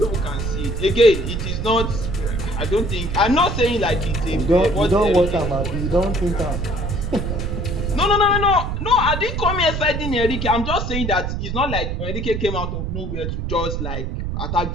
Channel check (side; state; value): right; noise; rumble, 3 dB below the sound